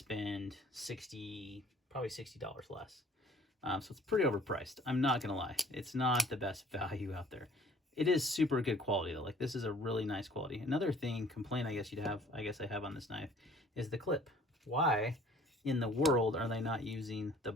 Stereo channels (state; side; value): normal; both; correlation 0.54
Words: 60 probably $60 less. So it's pretty overpriced. I'm not gonna lie, it's not the best value out there. It is super good quality though. Like, this is a really nice quality. Another complaint I guess I have on this knife is the clip. Why in the world are they not using the